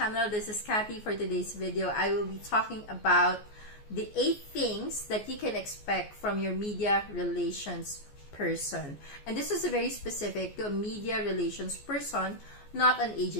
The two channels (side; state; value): right; late; 14 ms